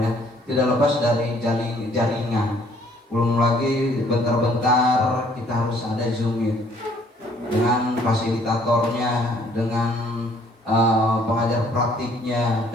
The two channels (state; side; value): normal; both; correlation 0.61